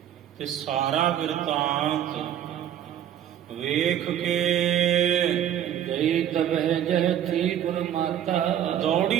ਤੇ ਸਾਰਾ ਬਿਰਤਾਂਤ ਵੇਖ ਕੇ ਗਈ ਤਬਹਿ ਜਹ ਥੀ ਗੁਰ ਮਾਤਾ।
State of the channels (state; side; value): quieter; left; 10.3 dB